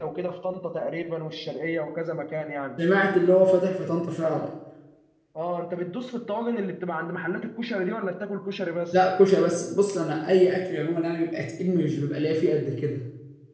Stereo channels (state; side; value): identical; both; correlation 1.00